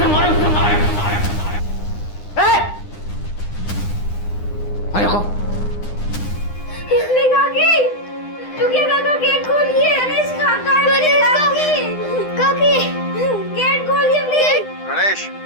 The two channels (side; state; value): right; late; 9.8 ms